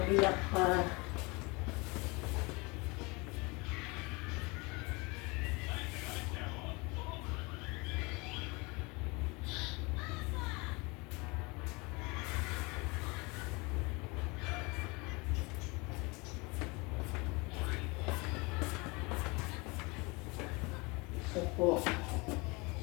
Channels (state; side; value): quieter; right; 26.9 dB